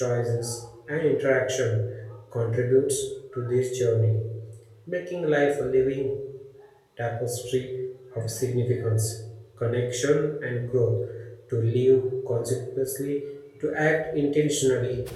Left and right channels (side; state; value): both; identical; correlation 1.00